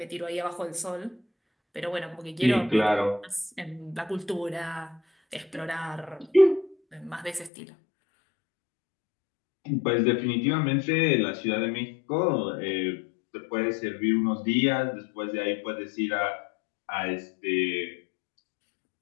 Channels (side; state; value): right; drops out; at 7.5 s